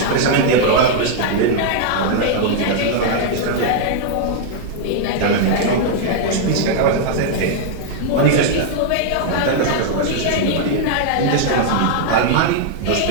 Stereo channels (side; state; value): both; different; correlation 0.00